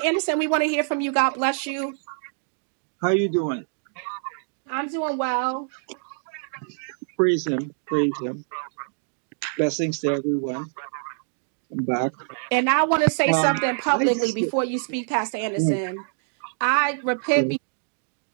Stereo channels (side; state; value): left; silent; digital silence